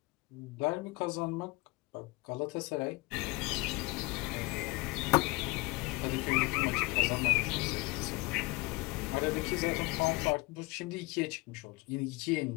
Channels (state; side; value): quieter; right; 23.1 dB